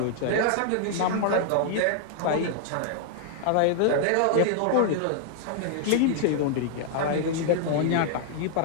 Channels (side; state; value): both; different; correlation -0.01